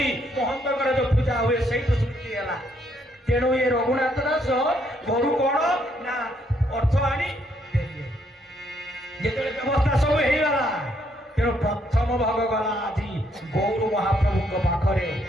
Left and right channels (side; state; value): both; normal; correlation 0.72